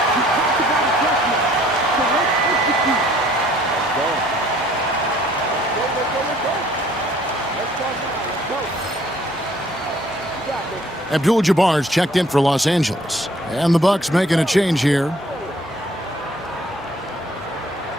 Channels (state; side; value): normal; both; correlation 0.59